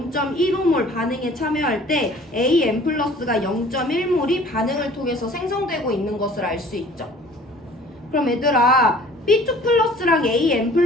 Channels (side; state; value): both; normal; correlation 0.50